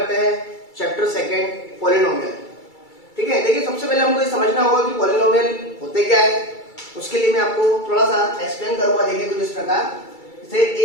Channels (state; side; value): late; right; 2.3 ms